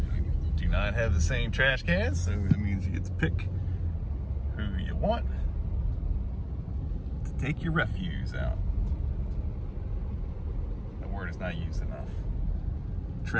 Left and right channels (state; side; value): identical; both; correlation 1.00